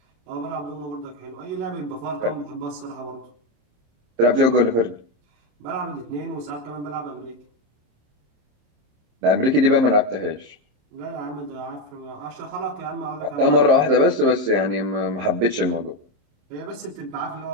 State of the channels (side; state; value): left; late; 26 ms